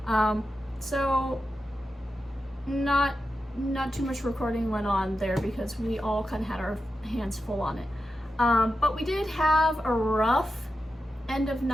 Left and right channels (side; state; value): both; normal; correlation 0.90